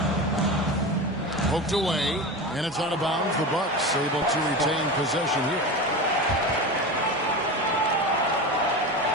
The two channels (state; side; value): normal; both; correlation 0.25